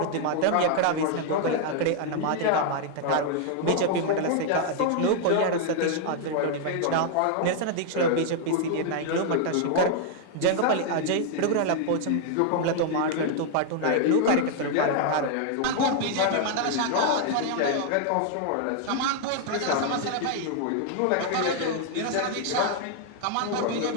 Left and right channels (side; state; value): both; different; correlation 0.00